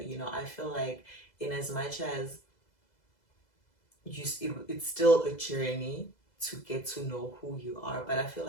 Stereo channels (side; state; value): right; late; 2.0 ms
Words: feel like in as much as it's still a journey to get to know who you are, but I feel